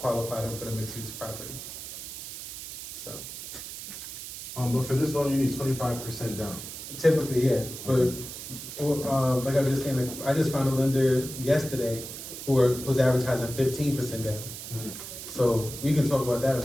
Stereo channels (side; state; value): right; noise; hiss, 10 dB below the sound